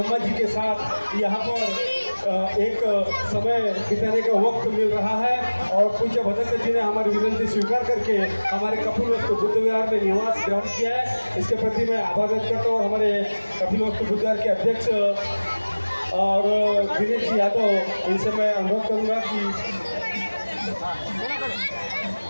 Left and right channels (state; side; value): inverted; both; correlation -1.00